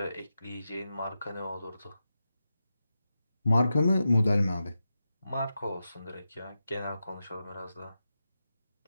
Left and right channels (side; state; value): both; inverted; correlation -0.90